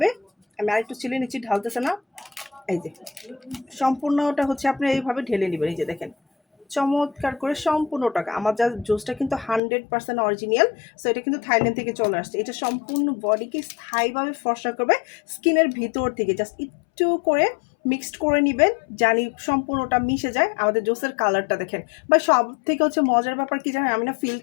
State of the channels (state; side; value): drops out; right; at 9.6 s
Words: আমি আরেকটু চিলে নিচ্ছি, ঢালতেছে না, এই যে সম্পূর্ণটা হচ্ছে আপনি এইভাবে ঢেলে নেবেন। এই যে দেখেন চমৎকার করে সম্পূর্ণ টাকা। আমার যা জুসটা কিন্তু 100% অরিজিনাল, সো এটা কিন্তু থাইল্যান্ড থেকে চলে আসছে। এটা সম্পূর্ণ বডিকে স্থায়ীভাবে ফর্সা করবে স্কিনের ভিতর থেকে। জাস্ট একটু করে মিক্সড করে নেবেন, জানি সম্পূর্ণটা মিশে যায়। আমাদের জুসের কালারটা দেখেন, বা সব থেকে হচ্ছে মজার ব্যাপার কি জানেন, আমি না